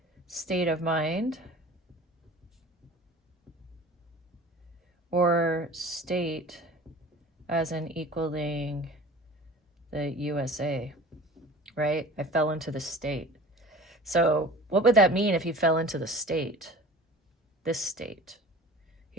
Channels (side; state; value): both; normal; correlation 0.41